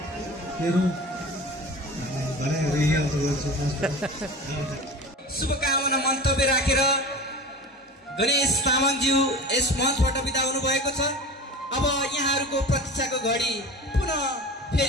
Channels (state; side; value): normal; both; correlation 0.34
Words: मेरो शुभकामना मन्तव्य राखेर गणेश तामाङज्यू यस मञ्चबाट बिदा हुनुभएको छ। अब यहाँहरूको प्रतीक्षाको घडी पुनः